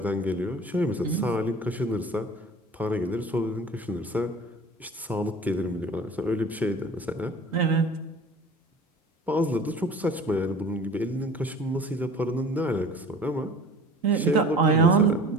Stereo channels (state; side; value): normal; both; correlation 0.43